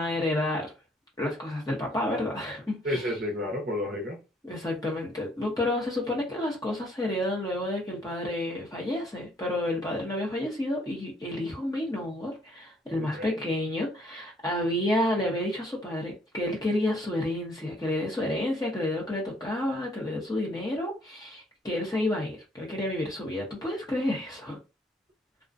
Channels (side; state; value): both; normal; correlation 0.65